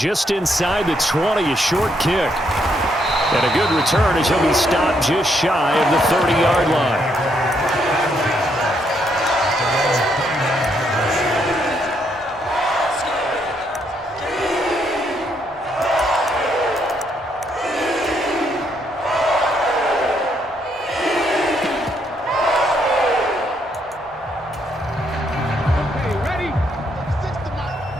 inside the 20, a short kick. And a good return as he'll be stopped just shy of the 30-yard line.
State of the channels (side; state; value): both; normal; correlation 0.74